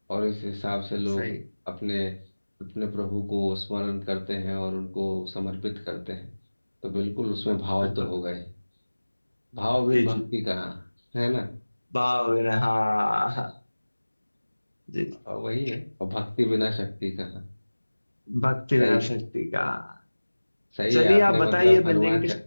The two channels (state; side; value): inverted; both; correlation -1.00